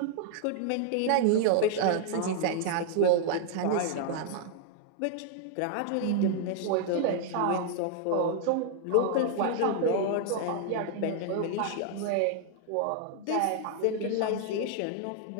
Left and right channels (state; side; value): different; both; correlation 0.00